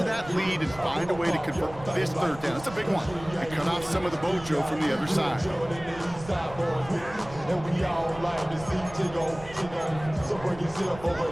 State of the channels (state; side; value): noise; right; rumble, 16 dB below the sound